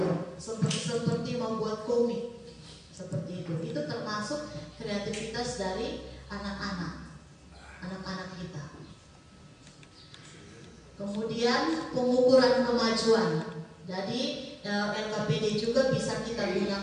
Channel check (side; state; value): both; identical; correlation 1.00